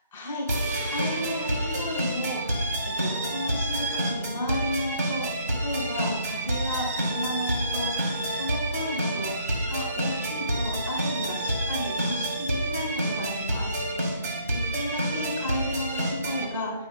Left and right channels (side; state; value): both; inverted; correlation -0.62